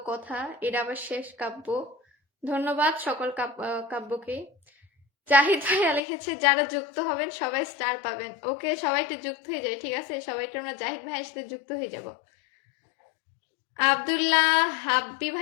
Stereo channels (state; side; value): drops out; right; at 6.0 s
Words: কথা, এটা আবার শেষ কাব্য। ধন্যবাদ সকল কাব্যকে। জাহিদ ভাইয়া লিখেছে যারা যুক্ত হবেন সবাই স্টার পাবেন, ওকে। সবাই একটু যুক্ত হয়ে যায়, ঠিক আছে? সবাইকে আমরা জাহিদ ভাইয়ের সাথে যুক্ত হয়ে যাব। আব্দুল্লাহ হাব্বি